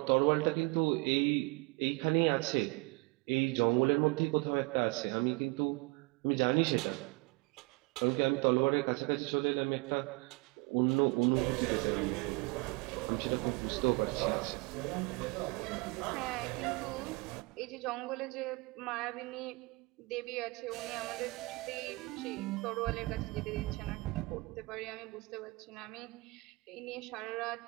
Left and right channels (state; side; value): quieter; left; 27.1 dB